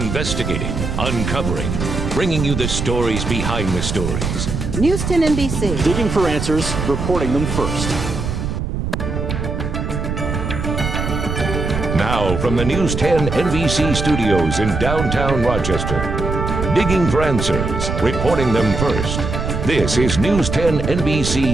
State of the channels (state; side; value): noise; right; rumble, 3 dB below the sound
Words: uncovering, bringing you the stories behind the stories. News 10 NBC. Digging for answers, reporting them first. Now from the News 10 NBC studios in downtown Rochester. Digging for answers, reporting them first. This is News 10